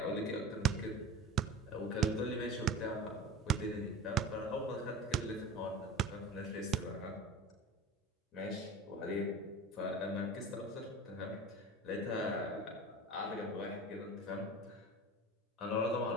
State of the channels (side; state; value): both; normal; correlation 0.34